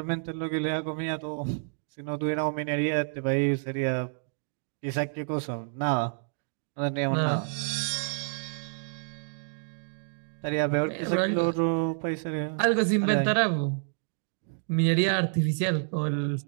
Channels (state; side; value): silent; left; digital silence